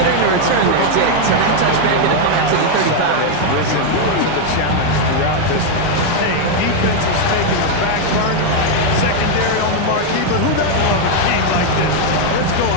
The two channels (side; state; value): both; different; correlation 0.01